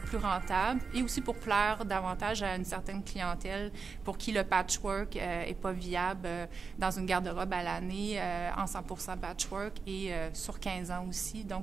rentable et aussi pour plaire davantage à une certaine clientèle pour qui le patchwork est pas viable dans une garde-robe à l'année en 100% patchwork et sur 15 ans aussi,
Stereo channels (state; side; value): quieter; left; 5.0 dB